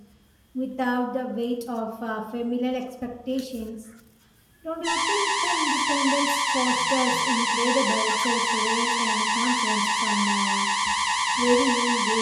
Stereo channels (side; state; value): both; identical; correlation 1.00